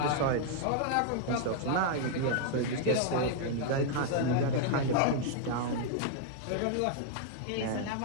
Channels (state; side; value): different; both; correlation -0.01